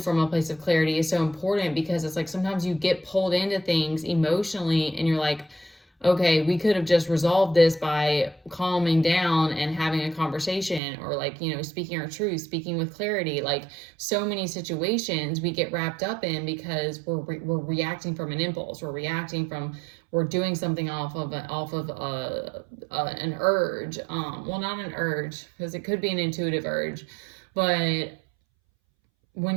from a place of clarity is so important, because it's like, sometimes you get pulled into things emotionally and you're like, okay, we could have just resolved this by calming down and having a conversation, or like, speaking our truth, speaking with clarity. Like, so many situations we get wrapped up in because we're reacting from an impulse. We're doing something off of an urge. Well, not an urge, because it could be an intuitive urge, but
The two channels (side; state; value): left; drops out; at 10.8 s